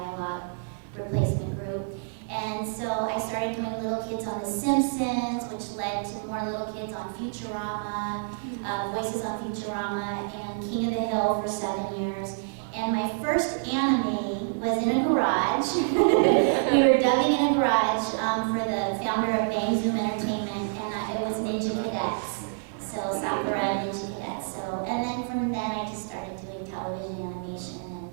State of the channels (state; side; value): silent; left; 60 dB below the other